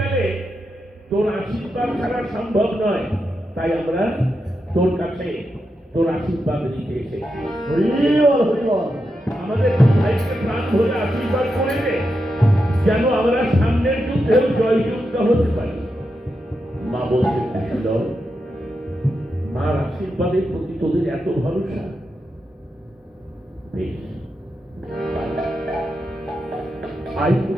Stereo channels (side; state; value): both; normal; correlation 0.86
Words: তোর আশীর্বাদ ছাড়া সম্ভব নয়। তাই আমরা তোর কাছে তোর আশীর্বাদ নিতে এসেছি। আমাদের ভাইকে প্রাণ ভরে আশীর্বাদ করে দে, যেন আমরা সামনের যুদ্ধেও জয়যুক্ত হতে পারি। মা বলতে কুশীলব, মার আশীর্বাদের প্রতি তোদের এত ভরসা? বেশ, আই